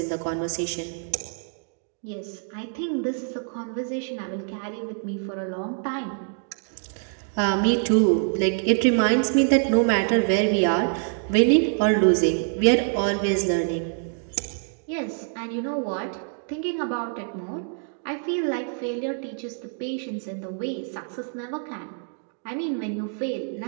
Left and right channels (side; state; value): left; silent; 61 dB below the other